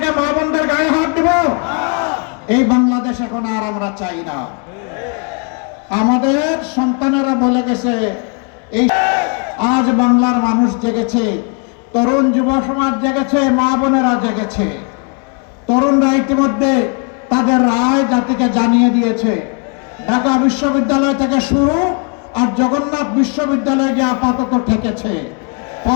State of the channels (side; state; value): right; quieter; 37.4 dB